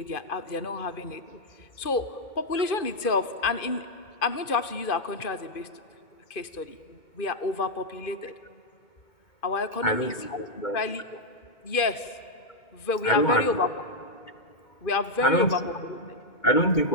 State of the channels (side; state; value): right; late; 2.5 ms